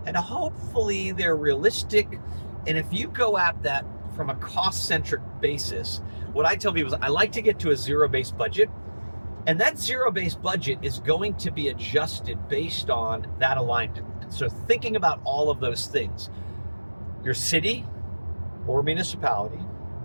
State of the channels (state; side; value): inverted; both; correlation -1.00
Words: and hopefully they're realistic. And if you go at that from a cost-centric basis, what I tell people is I like to get to a zero-based budget, and that zero-based budget is going to be adjusted based on that alignment. And so thinking about all of those things, your city or municipality,